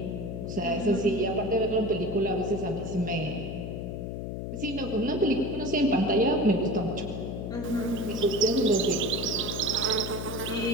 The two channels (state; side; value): noise; left; hum, 5 dB below the sound